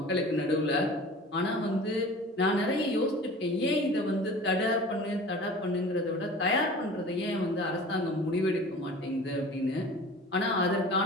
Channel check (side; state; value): both; normal; correlation 0.41